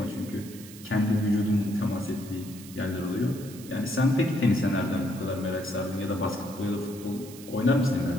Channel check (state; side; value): noise; right; hiss, 17 dB below the sound